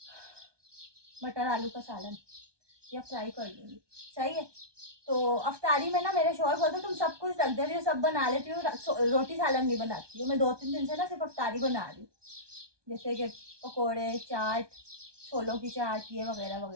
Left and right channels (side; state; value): left; late; 1.2 ms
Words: मटर आलू का सालन, या फ्राई कर लूँगी। सही है। तो अफ्तारी में ना मेरे शौहर बोलते तुम सब कुछ रख दे रही हो, सब बना लेती हो, रोटी सालन नहीं बनाती हो। मैं 2-3 दिन से ना सिर्फ अफ्तारी बना रही हूँ, जैसे कि पकोड़े, चाट, छोलों की चाट, ये वगैरह